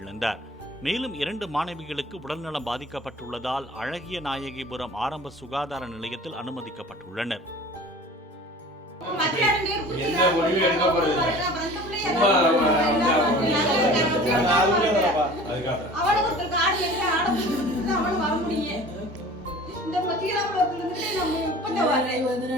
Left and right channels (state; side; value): normal; both; correlation 0.43